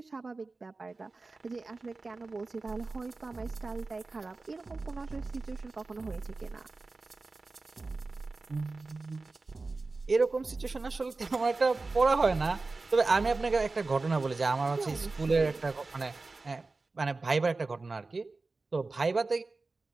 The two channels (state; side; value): quieter; left; 3.7 dB